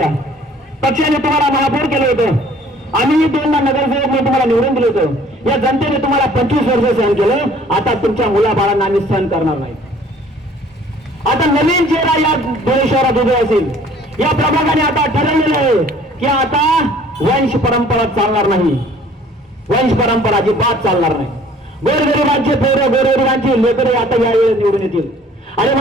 पक्षाने तुम्हाला महापौर केलं होतं, आम्ही 2दा नगरसेवक म्हणून तुम्हाला निवडून दिलं होतं. या जनतेने तुम्हाला 25 वर्ष सहन केलं. आता तुमच्या मुलाबाळांना आम्ही सहन करणार नाही. आता नवीन चेहरा या धुळे शहरात उभे असेल. या प्रभागाने आता ठरवलेलं आहे की आता वंश परंपरा चालणार नाही, वंश परंपरा अजिबात चालणार नाही. गोरगरिबांचे पोरं, गोरगरिबांची लेकरे आता यावेळी निवडून येतील. आणि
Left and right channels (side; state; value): both; normal; correlation 0.54